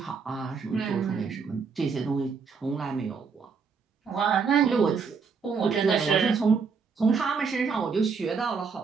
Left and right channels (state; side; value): quieter; left; 5.4 dB